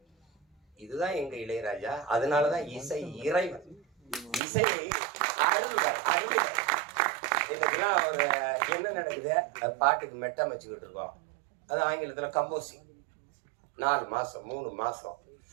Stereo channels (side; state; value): left; drops out; at 4.4 s